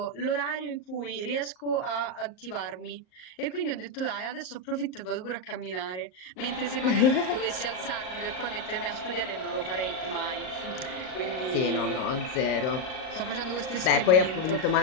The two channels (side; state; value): right; late; 38 ms